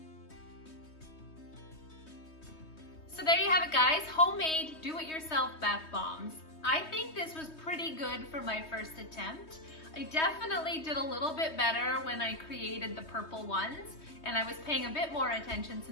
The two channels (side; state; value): right; late; 3.2 ms